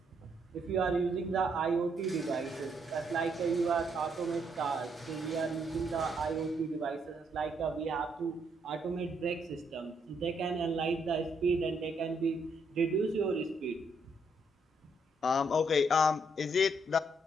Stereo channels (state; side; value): normal; both; correlation 0.73